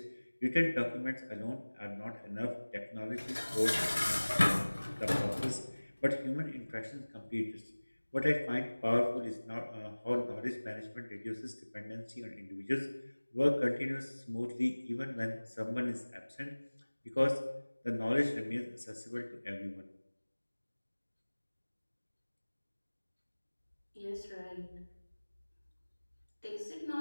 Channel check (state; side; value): inverted; both; correlation -1.00